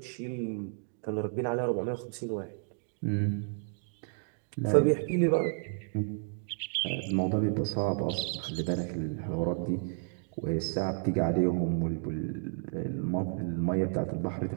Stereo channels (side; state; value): left; silent; 57 dB below the other